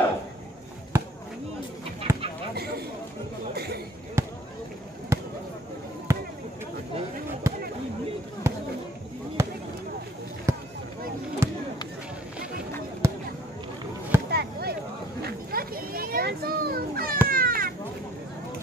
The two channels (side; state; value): both; normal; correlation 0.55